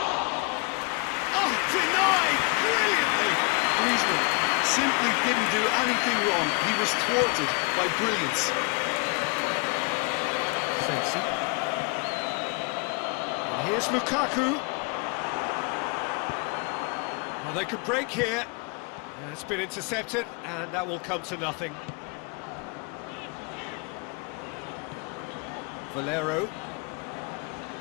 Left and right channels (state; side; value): quieter; right; 31.3 dB